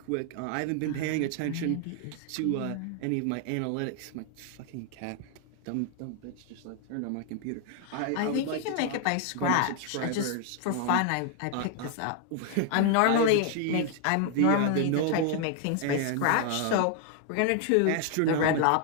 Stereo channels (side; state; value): both; different; correlation 0.00